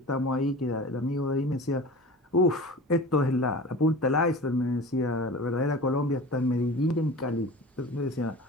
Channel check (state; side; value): normal; both; correlation 0.36